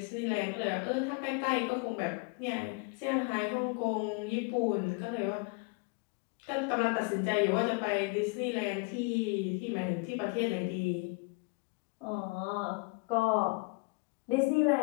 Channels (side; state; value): right; quieter; 29.9 dB